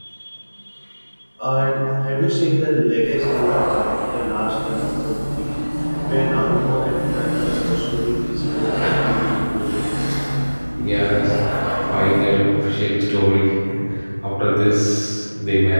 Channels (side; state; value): both; inverted; correlation -1.00